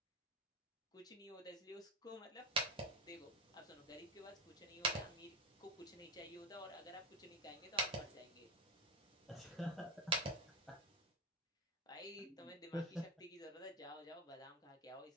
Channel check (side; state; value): both; normal; correlation 0.18